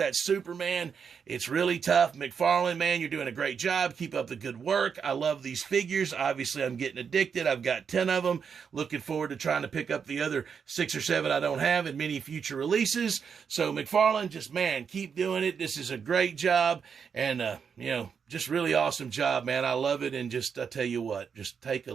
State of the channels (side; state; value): left; quieter; 6.6 dB